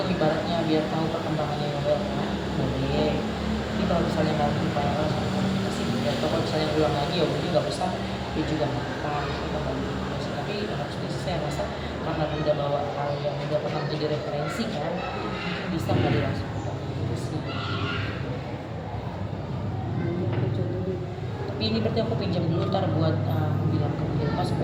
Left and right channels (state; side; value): identical; both; correlation 1.00